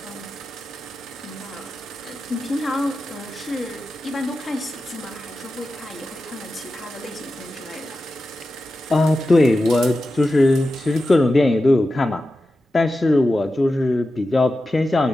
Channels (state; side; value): normal; both; correlation 0.92